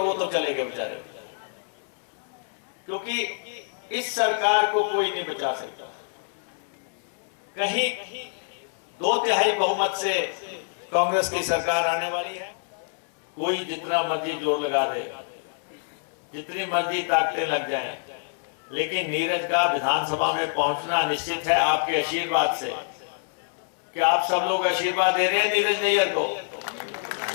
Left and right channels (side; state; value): right; silent; 61 dB below the other